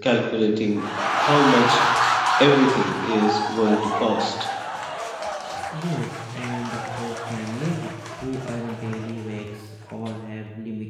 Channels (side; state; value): both; identical; correlation 1.00